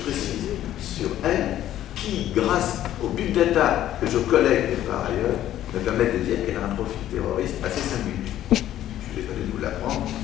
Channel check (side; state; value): right; quieter; 12.4 dB